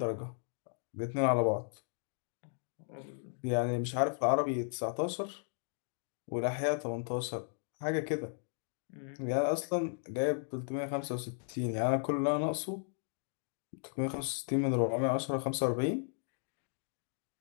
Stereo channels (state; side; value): silent; right; digital silence